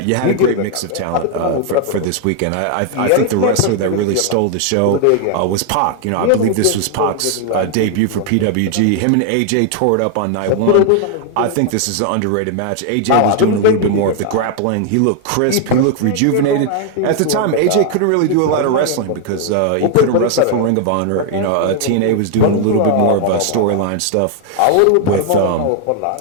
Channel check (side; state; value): both; different; correlation 0.00